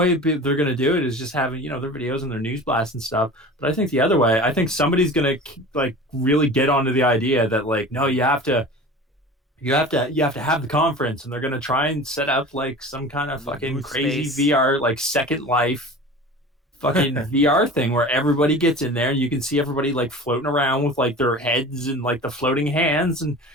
they're gonna do it is just having their videos and their news blasts and stuff. But I think the other way, I think somebody's gonna like really get onto the idea that like, no, you have to have the conference, and they're gonna try and set up like some kind of fucking crazy space. VR, like Second Life fucking VR thing where everybody gets in there and you can see everybody like floating around with like their heads and like the floating hands, and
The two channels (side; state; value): both; normal; correlation 0.37